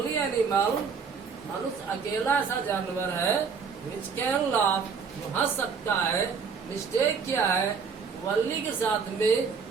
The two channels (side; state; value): left; quieter; 5.8 dB